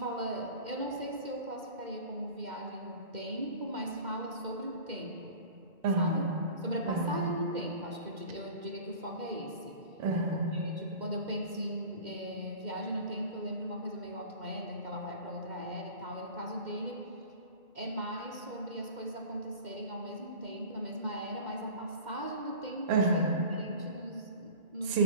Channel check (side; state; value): left; late; 2.1 ms